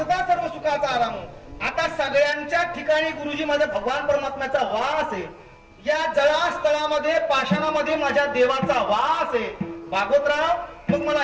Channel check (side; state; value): both; identical; correlation 1.00